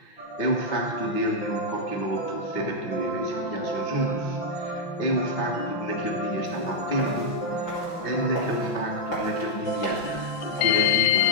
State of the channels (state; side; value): late; right; 5.9 ms